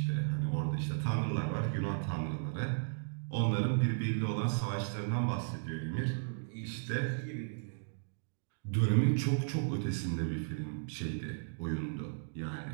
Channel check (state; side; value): silent; left; digital silence